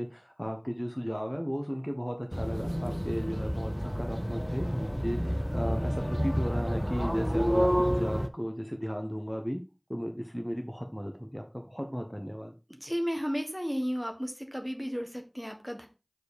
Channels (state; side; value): identical; both; correlation 1.00